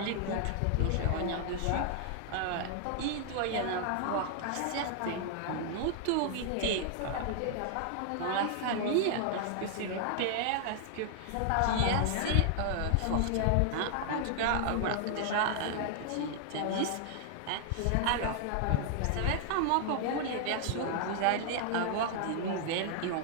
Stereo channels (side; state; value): both; different; correlation 0.00